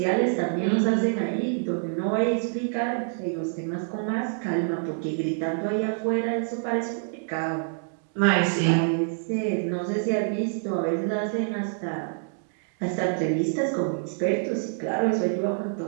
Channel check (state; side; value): silent; left; digital silence